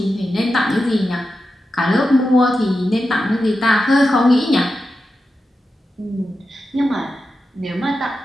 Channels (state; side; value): normal; both; correlation 0.91